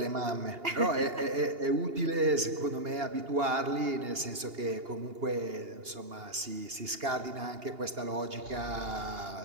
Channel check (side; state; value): left; late; 2.8 ms